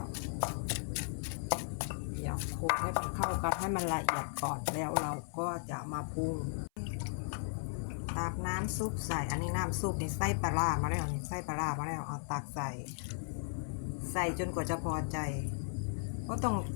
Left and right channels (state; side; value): silent; right; 54 dB below the other